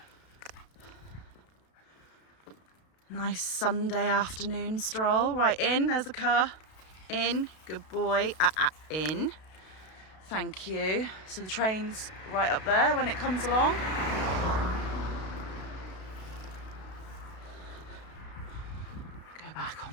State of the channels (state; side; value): late; right; 32 ms